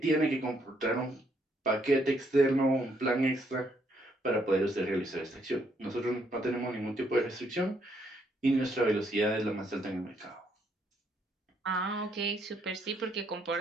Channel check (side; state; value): both; normal; correlation 0.72